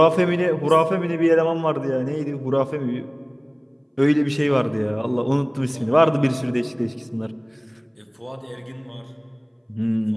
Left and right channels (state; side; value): identical; both; correlation 1.00